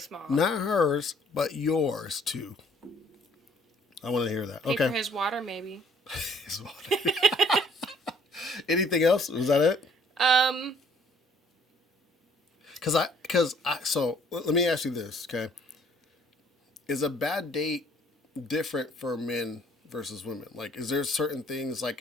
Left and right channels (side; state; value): both; normal; correlation 0.61